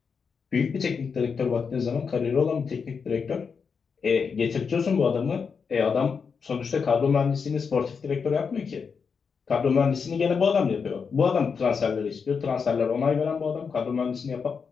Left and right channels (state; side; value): quieter; right; 5.8 dB